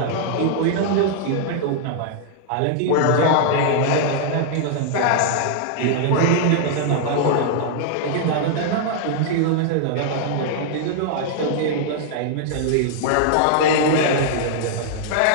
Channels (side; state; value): both; different; correlation -0.01